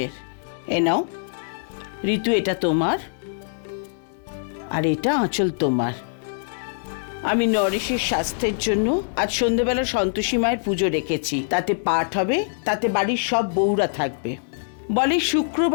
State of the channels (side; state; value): right; silent; digital silence